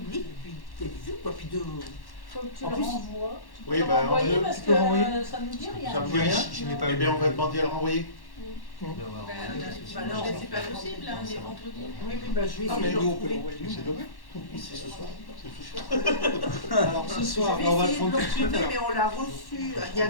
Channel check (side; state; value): right; late; 1.1 ms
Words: Puis Faut que tu en le plus, renvoies. Tu oui, peux le renvoyer parce que ça nous dit rien. Ça me dit rien. Eh bien, on va demander à le renvoyer. Non, c'est pas possible, hein, les vendredis. Oui, je vais essayer de le retrouver. C'est demain. C'est ce soir. Alors ce soir, Je vais on va le essayer de prendre le tout de suite. retrouver, alors. mais on l'a reçu il y a